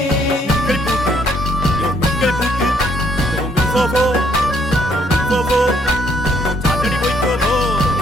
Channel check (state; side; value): normal; both; correlation 0.68